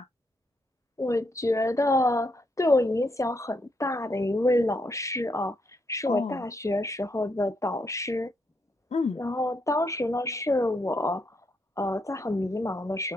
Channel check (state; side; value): normal; both; correlation 0.78